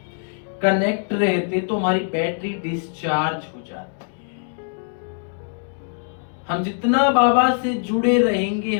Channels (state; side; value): silent; right; 61 dB below the other